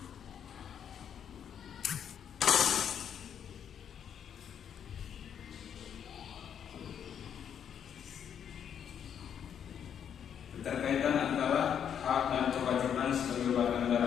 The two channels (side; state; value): right; quieter; 8.5 dB